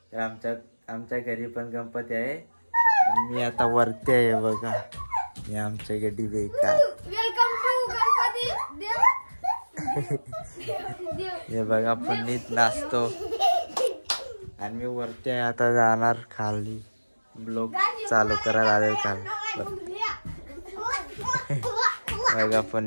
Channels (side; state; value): both; inverted; correlation -1.00